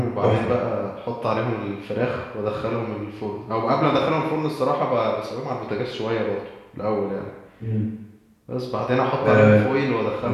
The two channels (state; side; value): identical; both; correlation 1.00